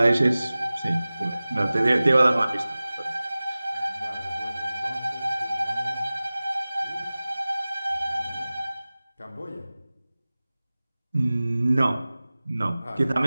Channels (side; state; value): both; inverted; correlation -0.98